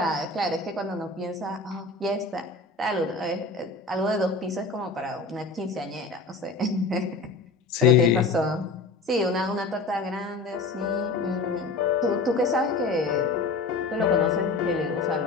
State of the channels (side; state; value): right; quieter; 3.6 dB